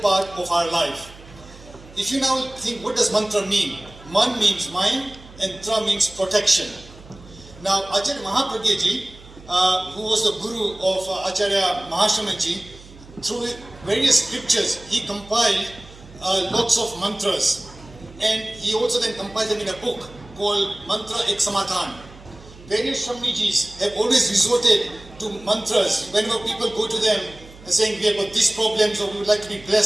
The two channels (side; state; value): right; noise; hum, 20 dB below the sound